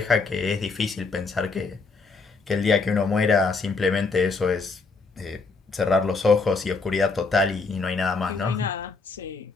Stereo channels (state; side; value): quieter; right; 4.2 dB